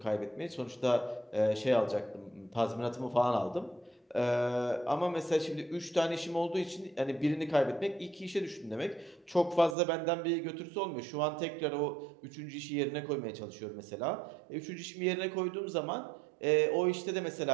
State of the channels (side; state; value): left; drops out; at 9.8 s